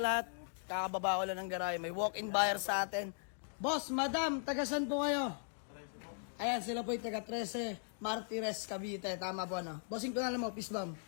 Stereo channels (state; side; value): silent; right; digital silence